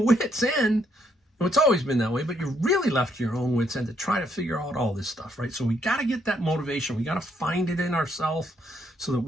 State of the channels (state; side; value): normal; both; correlation 0.74